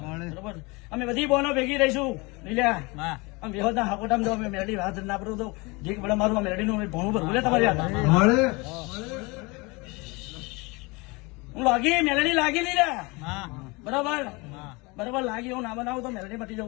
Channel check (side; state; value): right; quieter; 26.1 dB